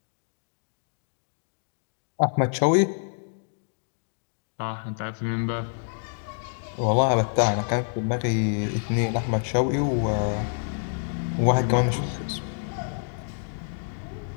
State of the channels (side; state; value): right; silent; digital silence